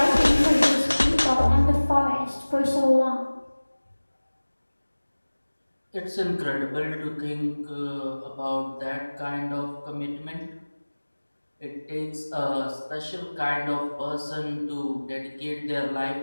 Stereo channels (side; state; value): both; inverted; correlation -1.00